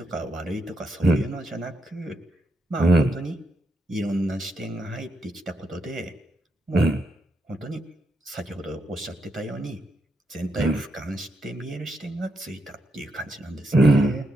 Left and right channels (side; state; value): both; normal; correlation 0.81